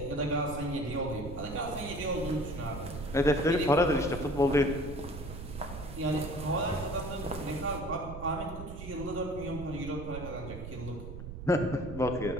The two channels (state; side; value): noise; right; rumble, 9 dB below the sound